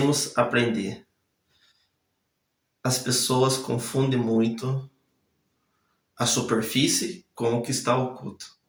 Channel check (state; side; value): identical; both; correlation 1.00